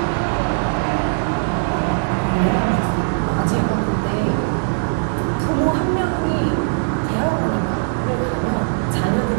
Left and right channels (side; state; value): left; silent; digital silence